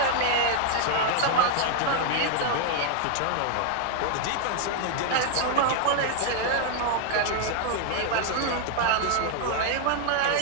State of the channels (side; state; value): both; different; correlation 0.00